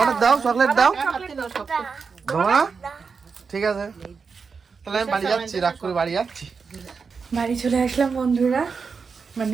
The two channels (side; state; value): left; quieter; 5.3 dB